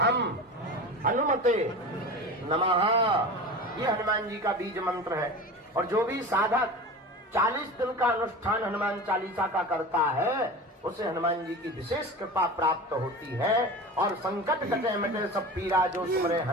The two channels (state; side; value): normal; both; correlation 0.32